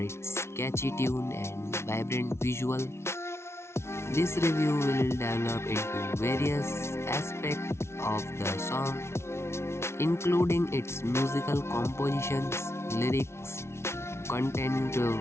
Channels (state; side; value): late; right; 0.13 ms